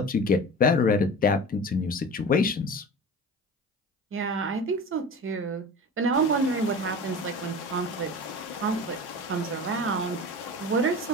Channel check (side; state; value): both; normal; correlation 0.34